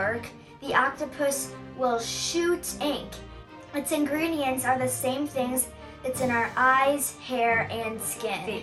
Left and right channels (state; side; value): identical; both; correlation 1.00